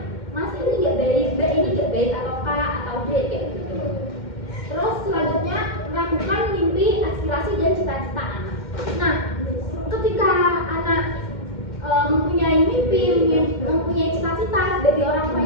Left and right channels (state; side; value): late; right; 2.1 ms